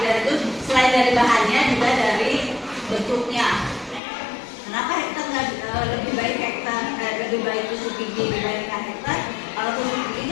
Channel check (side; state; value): right; drops out; at 4.0 s